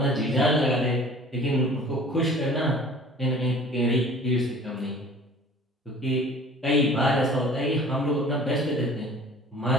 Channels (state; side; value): normal; both; correlation 0.47